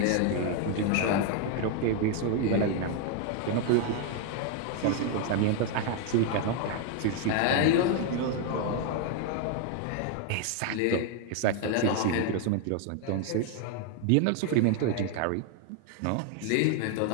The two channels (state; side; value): different; both; correlation 0.01